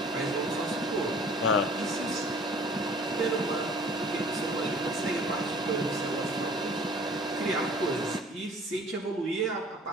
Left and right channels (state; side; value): normal; both; correlation 0.50